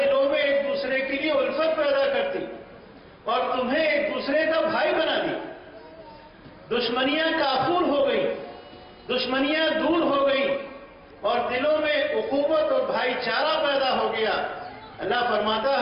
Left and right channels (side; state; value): both; identical; correlation 1.00